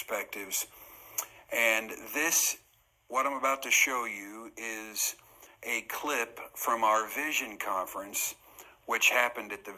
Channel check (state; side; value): identical; both; correlation 1.00